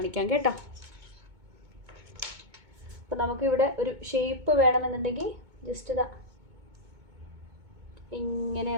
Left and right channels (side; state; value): left; late; 2.2 ms